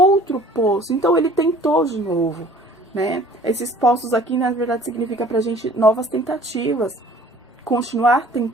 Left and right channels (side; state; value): both; normal; correlation 0.51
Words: poço. Então ele tentou de novo, né? Esses poços aqui, na verdade, significa pra gente novas tentativas. Continuar